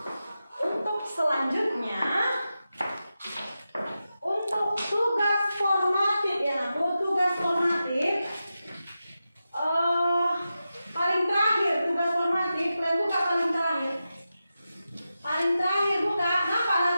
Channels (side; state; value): both; inverted; correlation -0.91